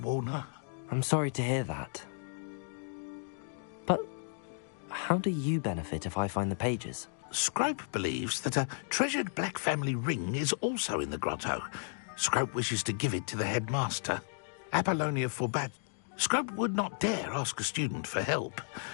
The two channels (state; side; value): silent; right; digital silence